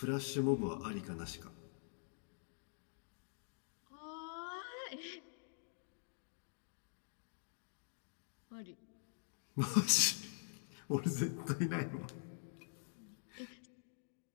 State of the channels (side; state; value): right; silent; digital silence